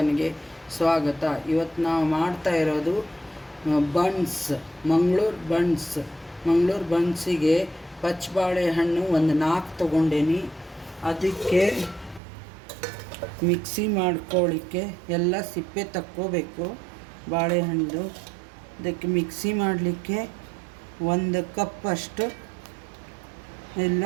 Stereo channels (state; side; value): drops out; left; at 12.2 s